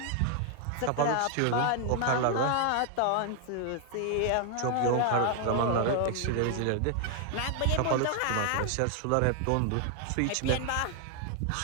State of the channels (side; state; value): both; different; correlation 0.00